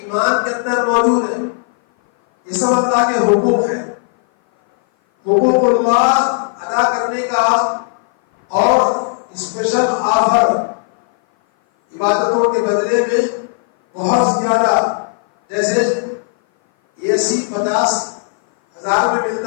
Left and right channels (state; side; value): silent; right; 57 dB below the other